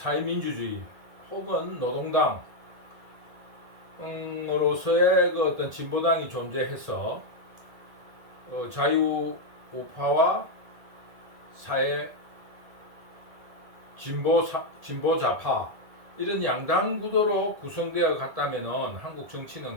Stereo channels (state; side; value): late; left; 1.7 ms